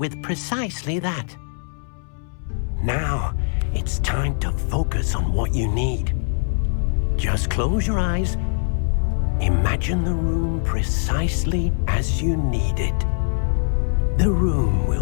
precisely that. Now, it's time to focus on what you need. Just close your eyes. Imagine the room precisely as you need it. The room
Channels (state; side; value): silent; right; 64 dB below the other